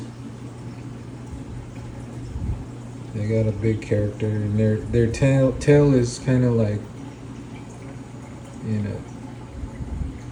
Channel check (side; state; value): both; identical; correlation 1.00